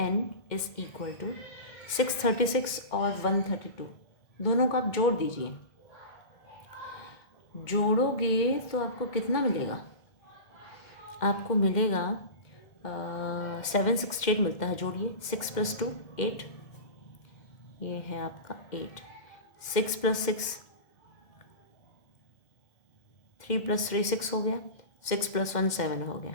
is equal to 636 और 132, दोनों को आप जोड़ दीजिए। जोड़ोगे तो आपको कितना मिलेगा? आपको मिलेगा 768 मिलता है। जोड़िए, 6 + 2 8, ये है आपका 8, 6 + 6 3 + 3 6 हो गया, 6 + 1 7 हो गया।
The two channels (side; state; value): right; late; 2.1 ms